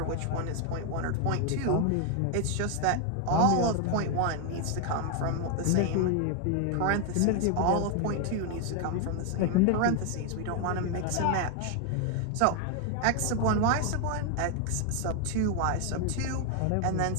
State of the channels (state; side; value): different; both; correlation 0.00